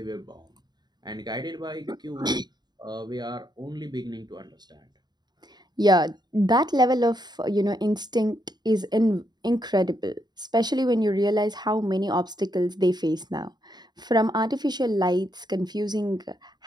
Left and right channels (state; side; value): late; left; 0.20 ms